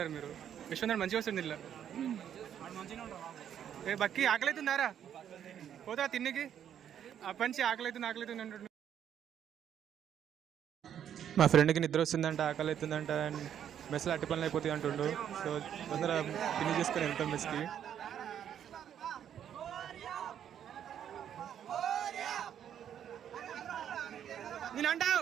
మీరు? విశ్వనాథ్ మంచిగా వస్తుంది ఇల్లు. ఏ బక్కి ఆకలి అవుతుందారా? పోతా తిన్నికి అప్పటి నుంచి ఆకలి అవుతుంది అంటుండు. మా ఫ్రెండ్కి నిద్ర వస్తుందంట, ఆకలి అవుతుందంట, మెస్లో అట్టి పనులు అయిపోతాయి అంటుండు. సో తొందర ఫినిష్ చేసుకొని వెళ్తాం మెస్కి. నేను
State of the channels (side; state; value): left; quieter; 9.5 dB